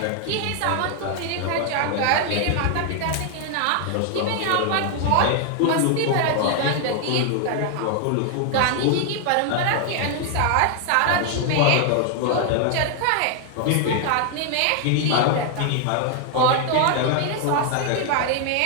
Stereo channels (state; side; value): different; both; correlation 0.00